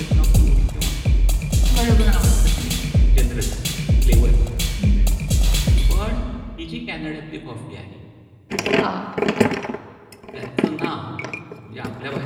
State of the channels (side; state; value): both; identical; correlation 1.00